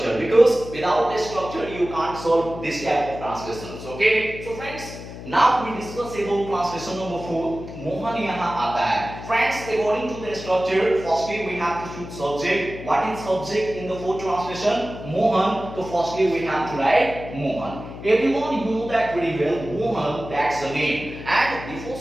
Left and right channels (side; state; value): left; noise; hum, 12 dB below the sound